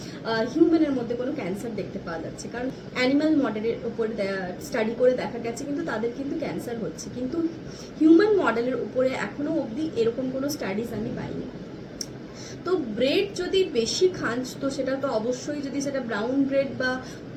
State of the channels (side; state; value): both; identical; correlation 1.00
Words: হিউম্যানের মধ্যে কোনো ক্যান্সার দেখতে পাওয়া যাচ্ছে। কারণ অ্যানিমাল মডেলের উপর স্টাডি করে দেখা গেছে কিন্তু তাদের কিন্তু ক্যান্সার হচ্ছে, কিন্তু হিউম্যান মডেলের উপরে এখনো অবধি এরকম কোনো স্টাডিজ আমি পাইনি। তো ব্রেড যদি বেশি খান তো সেটা তো অবশ্যই, যদি সেটা ব্রাউন ব্রেড বা